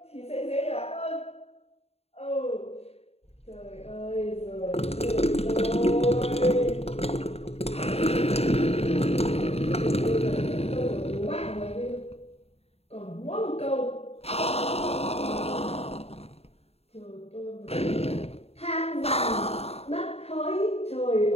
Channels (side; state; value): right; late; 0.30 ms